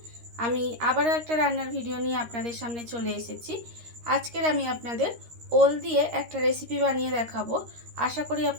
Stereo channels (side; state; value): left; late; 13 ms